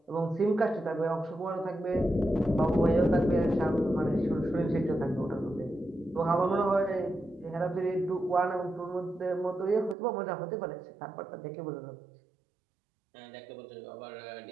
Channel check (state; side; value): drops out; left; at 10.0 s